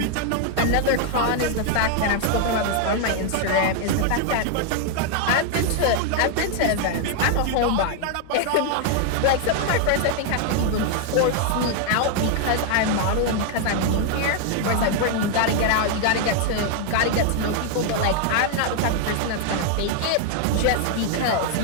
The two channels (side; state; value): both; different; correlation 0.00